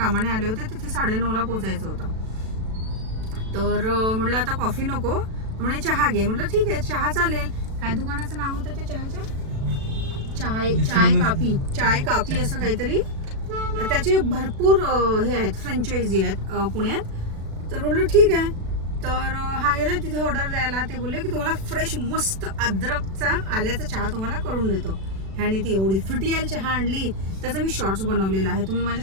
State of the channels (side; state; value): left; late; 36 ms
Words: आले होते तिथे 9:30ला पोचायचं होतं. तर म्हटलं आता कॉफी नको, म्हणे चहा घे. म्हटलं ठीक आहे, चहा चालेल. काय दुकानाचं नाव होतं ते चहाच्या? चाय काफी असं काहीतरी. त्याचे भरपूर हे आहेत, फ्रँचायझी आहेत पुण्यात. तर म्हटलं ठीक आहे. तर हा गेला तिथे ऑर्डर द्यायला. ते बोलले की तुम्हाला फ्रेश मस्त अद्रकचा आल्याचा चहा तुम्हाला करून देतो. ह्याने ती एवढी फिटियल चहा आणली, त्याचा मी शॉर्ट्स बनवलेला आहे, तुम्ही माझ्या